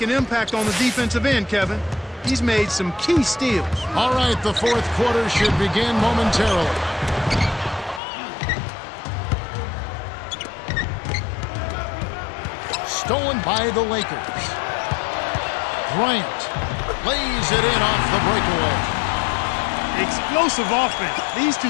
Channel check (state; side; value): drops out; right; at 8.0 s